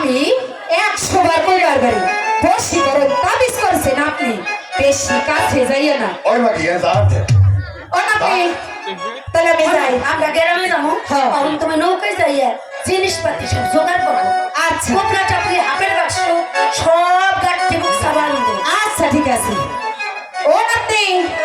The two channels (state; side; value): identical; both; correlation 1.00